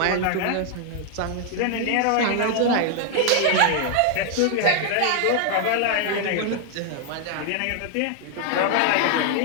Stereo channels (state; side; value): different; both; correlation 0.00